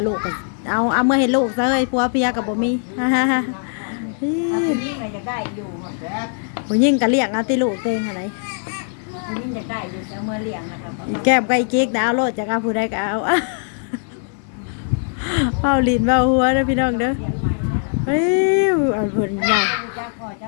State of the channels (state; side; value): silent; right; digital silence